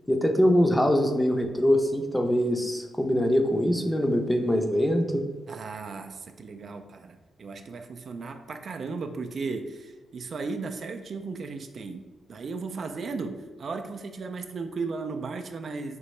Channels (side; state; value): both; normal; correlation 0.91